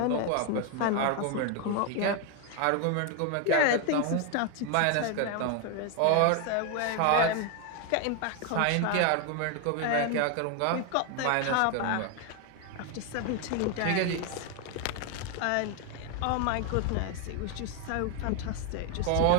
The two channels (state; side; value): different; both; correlation 0.01